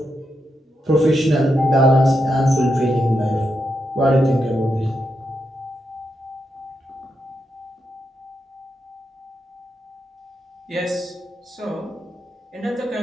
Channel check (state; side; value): normal; both; correlation 0.84